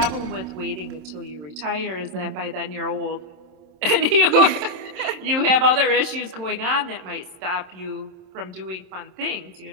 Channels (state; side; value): late; left; 27 ms